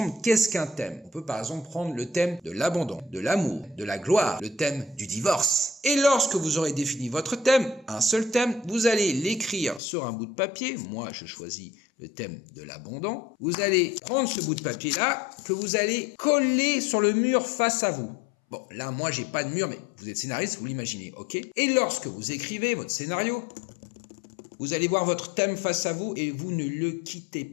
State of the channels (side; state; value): right; drops out; at 9.8 s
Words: qu'est-ce qu'un thème. On peut par exemple prendre le thème de l'abandon, de l'amour, de la gloire, le thème du divorce. Et lorsque vous aurez défini votre thème, un seul thème, vous allez l'écrire sur un bout de papier. Moi, je choisis le thème de l'abandon. Vous allez prendre ce bout de papier-là que vous allez coller sur le mur face à vous. Bon, là, moi, j'ai pas de mur, mais vous êtes scénariste, vous l'imaginez, ok? Et lorsque vous écrivez votre scénario, vous allez voir votre thème face à vous et vous ne le quittez